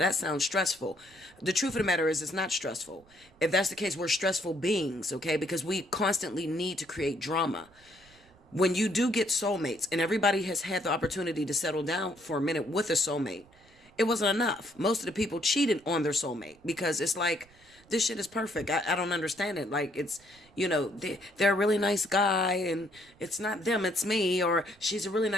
sounds stressful. The truth of the matter is it's not stressful. If that's the case, we're stressful beings. Okay. Because we constantly need to create drama. When you do get soulmates, and everybody has had the opportunity to settle down for a minute with a soulmate, it wasn't enough. Most of the people cheated on their soulmate because it's like, this shit is perfect. I don't understand it. Like, it's, they're a really nice guy and it's not them, it's me. Or she's a really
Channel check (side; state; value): right; noise; rumble, 28 dB below the sound